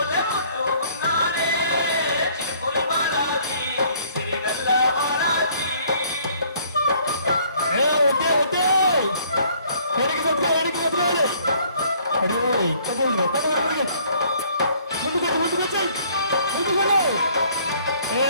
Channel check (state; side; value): inverted; both; correlation -0.60